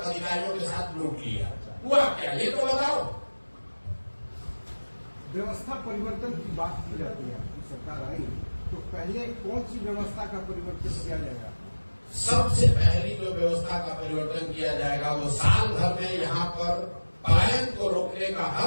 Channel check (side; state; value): both; inverted; correlation -1.00